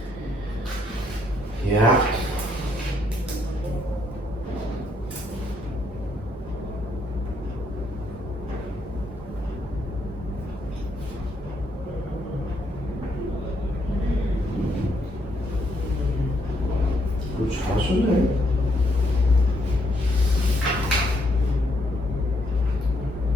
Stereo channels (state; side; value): normal; both; correlation 0.73